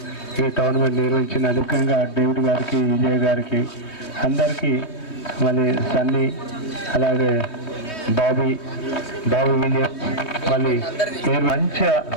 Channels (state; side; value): late; right; 3.2 ms